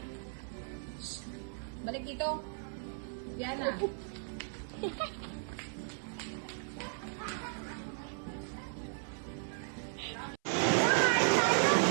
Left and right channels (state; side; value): silent; left; 54 dB below the other